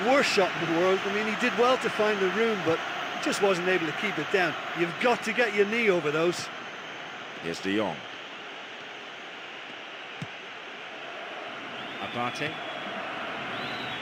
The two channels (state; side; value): identical; both; correlation 1.00